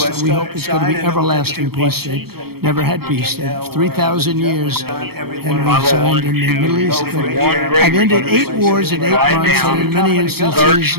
We hope it's going to be everlasting peace. They never had peace. 3,000 years, and we signed in the Middle East. But I've ended 8 wars in 8 months, and in many instances,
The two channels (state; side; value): late; left; 0.96 ms